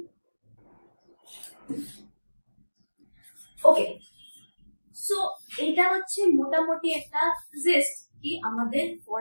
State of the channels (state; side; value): inverted; both; correlation -1.00